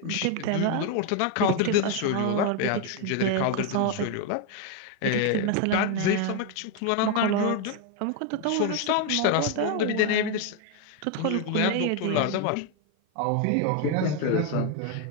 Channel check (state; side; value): different; both; correlation 0.01